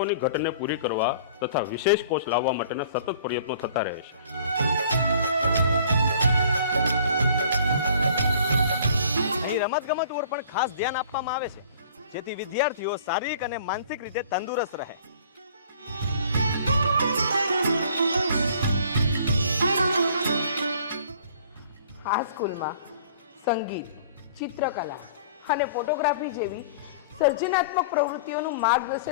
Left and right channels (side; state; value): both; inverted; correlation -0.51